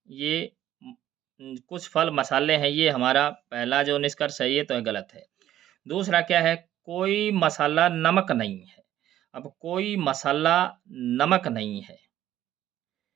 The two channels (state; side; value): quieter; left; 12.4 dB